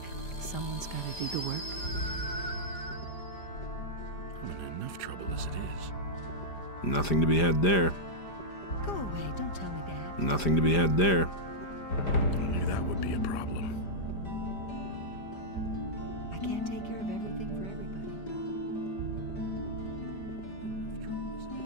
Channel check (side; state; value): right; late; 5.0 ms